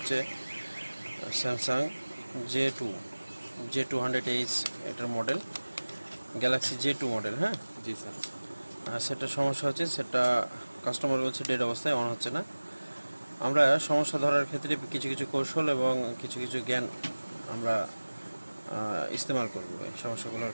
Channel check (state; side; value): inverted; both; correlation -1.00